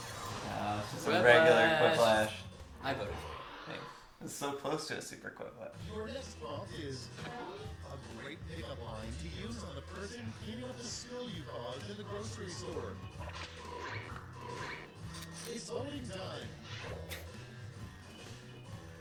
just a Quiplash. regular Quiplash. I voted. Thanks. It's so close to a super Quiplash. Your next prompt is a great pickup line to use on the person cleaning up the spill you caused in the grocery store. It's voting time.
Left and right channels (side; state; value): both; identical; correlation 1.00